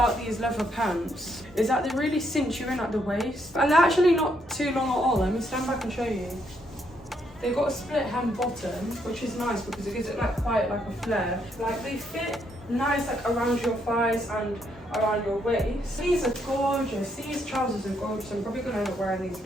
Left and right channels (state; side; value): normal; both; correlation 0.74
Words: these leather pants is that they really cinch you in at the waist, and they're actually not too long at all. Let me stand back and show you. They've got a split hem bottom, which is nice because it gives it like quite like a flare. Like they fit nice like around your thighs and around your waist. These are gorgeous. These trousers are gorgeous. I'm probably gonna end up wearing these